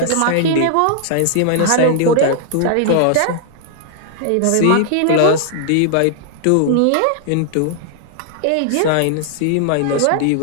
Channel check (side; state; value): both; different; correlation 0.00